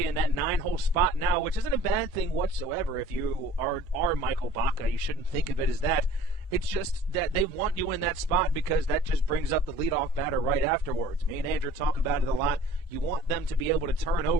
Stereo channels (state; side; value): normal; both; correlation 0.48